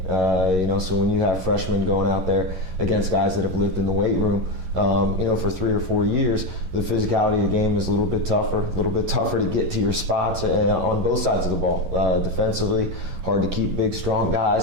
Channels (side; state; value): left; late; 11 ms